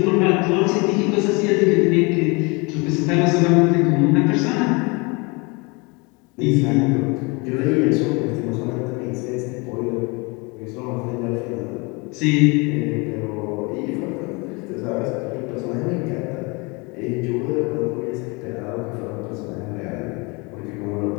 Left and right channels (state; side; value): quieter; right; 28.4 dB